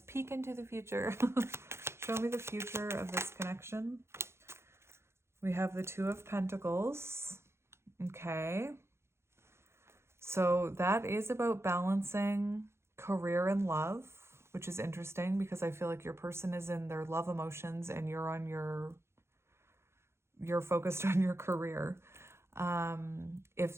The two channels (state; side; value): late; left; 0.13 ms